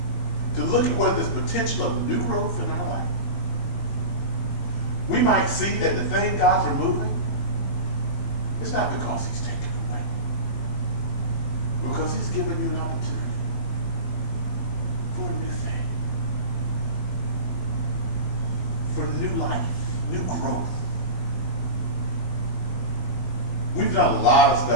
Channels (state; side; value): late; right; 21 ms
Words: to look at where there's potential of new growth in our life, we might see that the thing God's removing is not because he's taken away, but because he's given you an opportunity for a new thing, for new life, new growth. We've done a lot of